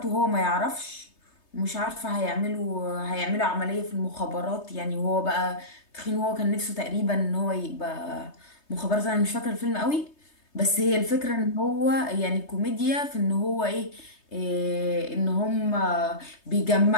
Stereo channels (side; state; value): right; late; 3.3 ms